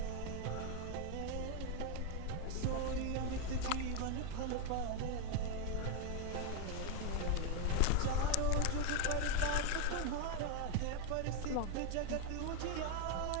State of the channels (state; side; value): different; both; correlation 0.00